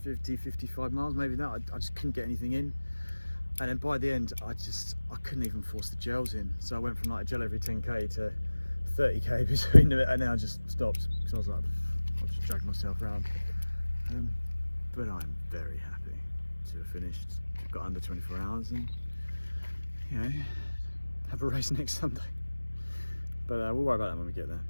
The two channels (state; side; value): inverted; both; correlation -1.00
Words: 50, 55 miles, maybe that. I just couldn't get anything in. And then by the end, I couldn't even force the gels in. So I went from like a gel every 10k to 30k between them, and then I just stopped because I was like, I'll just drag myself around. But I'm very happy to have finished. I've got under 24 hours and, you know, have a race next Sunday. But we'll worry about that when we get there.